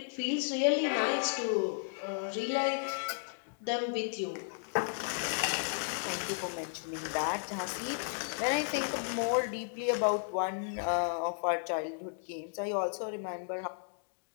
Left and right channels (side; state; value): right; silent; digital silence